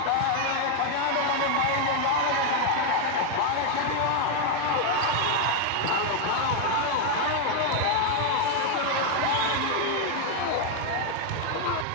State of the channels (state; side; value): different; both; correlation 0.01